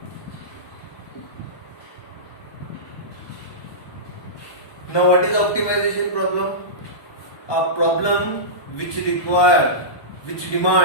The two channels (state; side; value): late; right; 1.2 ms